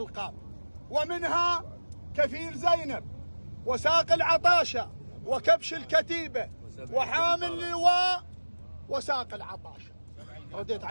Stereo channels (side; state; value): both; inverted; correlation -1.00